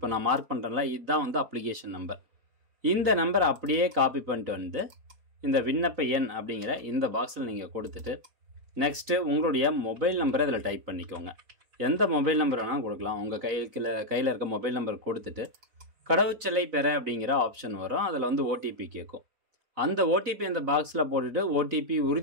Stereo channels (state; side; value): late; left; 4.0 ms